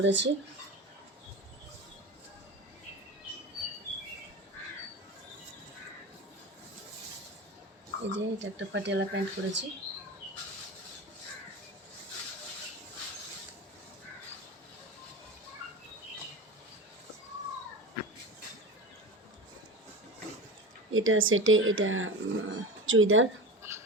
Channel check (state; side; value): normal; both; correlation 0.28